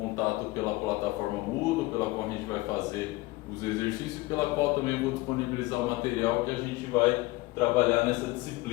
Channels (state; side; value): quieter; right; 20.9 dB